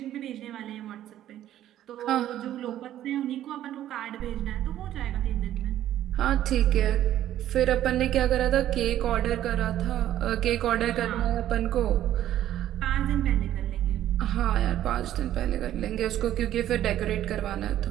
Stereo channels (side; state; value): left; quieter; 12.3 dB